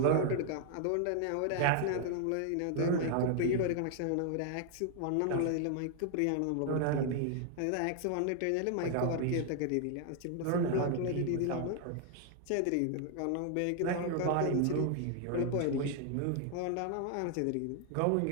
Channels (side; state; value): both; different; correlation 0.00